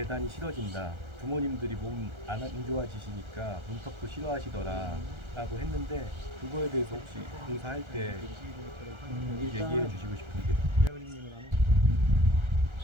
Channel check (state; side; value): late; left; 1.3 ms